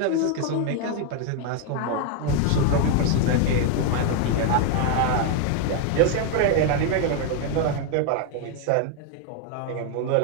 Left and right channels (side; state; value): both; different; correlation 0.00